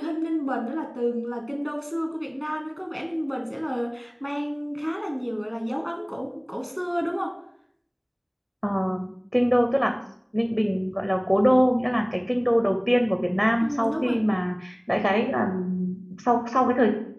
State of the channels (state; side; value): identical; both; correlation 1.00